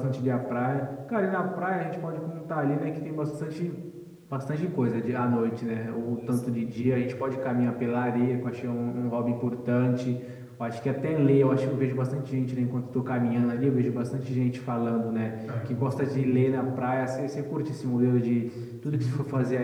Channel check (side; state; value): both; identical; correlation 1.00